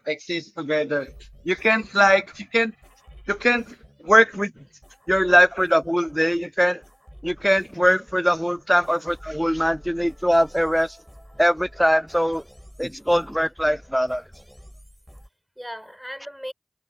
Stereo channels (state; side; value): identical; both; correlation 1.00